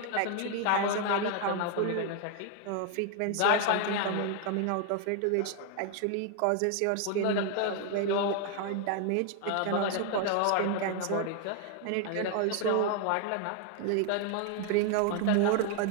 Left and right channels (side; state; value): both; different; correlation 0.00